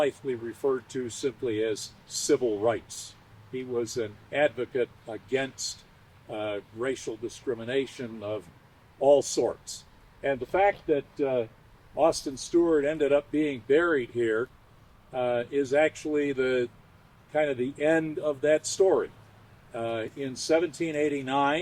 referred to simply as civil rights. He was an advocate against racial discrimination of all sorts. And the fact that Austin Steward ended up being buried here is actually the kind of the end of that story. In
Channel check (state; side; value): identical; both; correlation 1.00